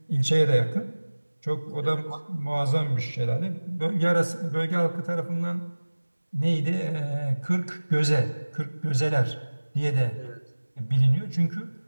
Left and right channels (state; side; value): inverted; both; correlation -1.00